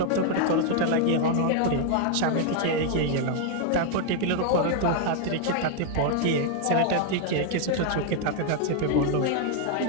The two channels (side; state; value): both; different; correlation 0.00